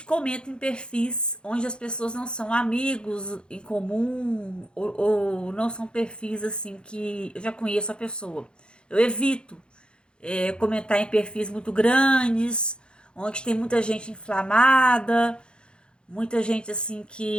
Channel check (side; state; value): right; late; 0.052 ms